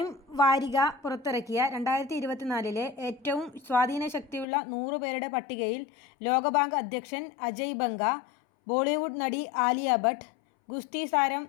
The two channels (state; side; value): drops out; right; at 4.5 s